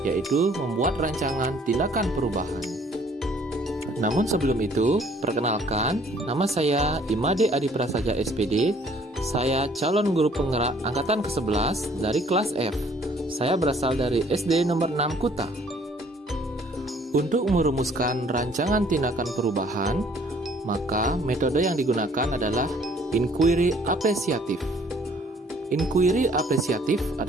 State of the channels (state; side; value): normal; both; correlation 0.59